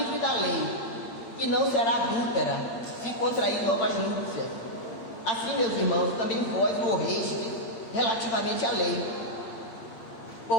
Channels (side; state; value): right; late; 8.9 ms